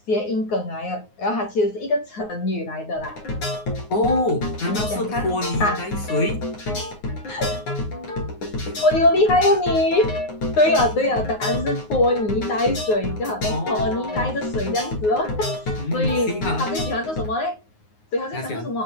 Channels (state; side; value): late; right; 9.5 ms